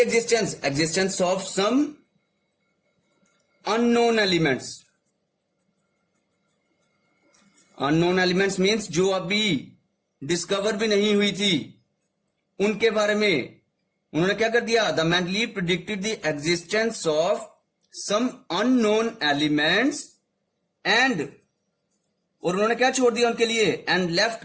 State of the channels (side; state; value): both; identical; correlation 1.00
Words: Existence of some unknown elements. Unknown elements means जो अभी डिस्कवर भी नहीं हुई थी, उनके बारे में उन्होंने क्या कर दिया? The Mendeleev predicted the existence of some unknown elements and, और उन्होंने क्या छोड़ दिया उनके लिए? एंड लेफ्ट